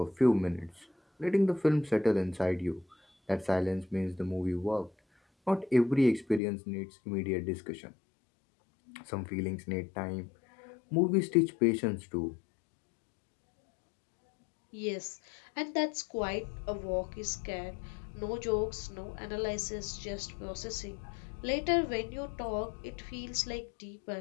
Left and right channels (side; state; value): right; drops out; at 6.4 s